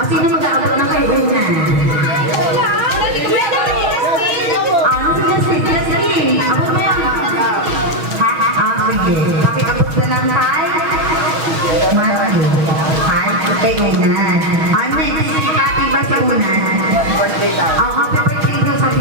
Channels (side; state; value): left; late; 6.3 ms